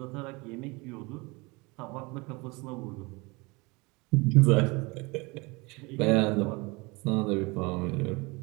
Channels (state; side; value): quieter; left; 26.1 dB